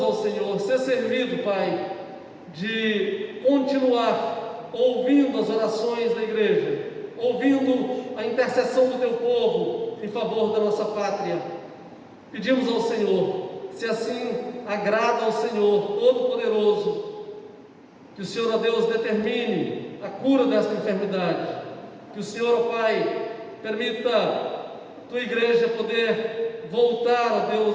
ao Senhor, ser servido, Pai, de continuar ouvindo as orações da igreja, ouvindo a intercessão do Teu povo em favor da nossa pátria. Pedimos ao Senhor, se assim agrada ao Senhor Todo-Poderoso, que o Senhor, ó Deus, determine a cura desta enfermidade, que o Senhor, ó Pai, permita a Tua igreja poder voltar, ó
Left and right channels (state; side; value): identical; both; correlation 1.00